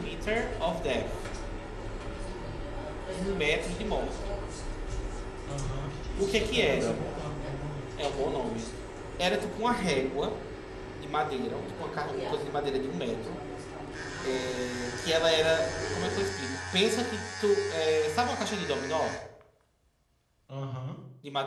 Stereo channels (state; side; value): identical; both; correlation 1.00